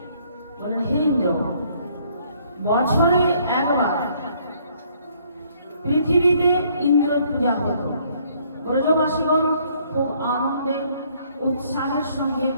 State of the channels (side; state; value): both; inverted; correlation -0.65